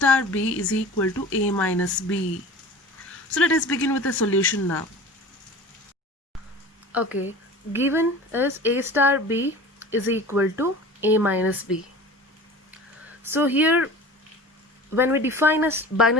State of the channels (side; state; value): both; normal; correlation 0.38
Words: b is equal to a minus b. So let us begin with the solution now. Okay, given is a star b is equal to a minus b. So here when we define a